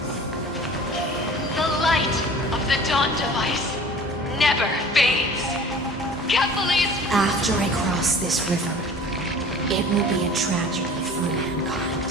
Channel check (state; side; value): normal; both; correlation 0.44